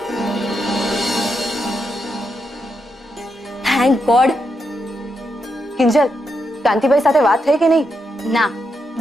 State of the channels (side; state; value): both; normal; correlation 0.83